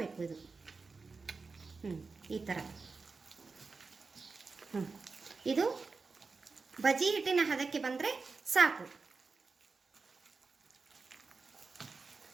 ಇದು. ಈ ಥರ ಇದು ಬಜಿ ಹಿಟ್ಟಿನ ಹದಕ್ಕೆ ಬಂದರೆ ಸಾಕು.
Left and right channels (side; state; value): left; quieter; 4.3 dB